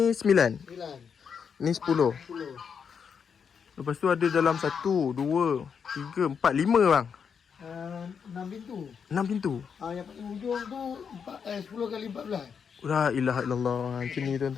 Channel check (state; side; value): quieter; right; 6.7 dB